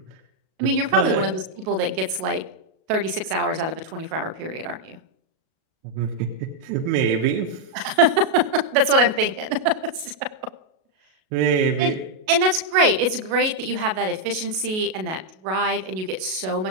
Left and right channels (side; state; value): left; late; 37 ms